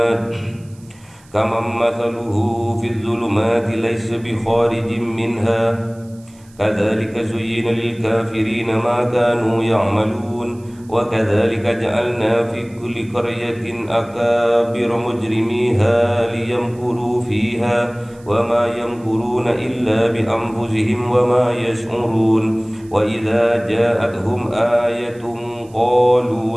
في الظلمات ليس بخارج منها كذلك زين للكافرين ما كانوا يعملون وكذلك جعلنا في كل قرية أكابر مجرميها ليمكروا فيها وما يمكرون إلا بأنفسهم وما يشعرون وإذا جاءتهم آية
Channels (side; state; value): right; noise; hiss, 29 dB below the sound